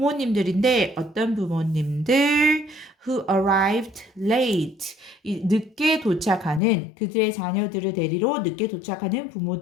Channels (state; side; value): drops out; right; at 6.6 s